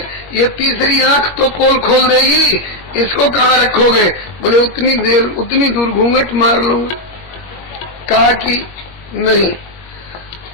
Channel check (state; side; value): late; right; 21 ms